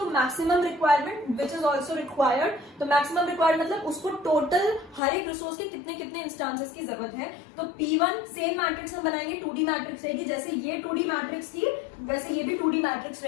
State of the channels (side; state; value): right; drops out; at 5.0 s